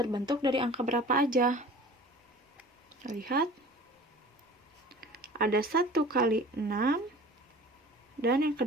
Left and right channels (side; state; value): both; normal; correlation 0.43